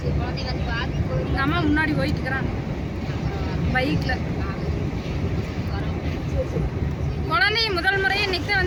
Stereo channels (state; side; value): identical; both; correlation 1.00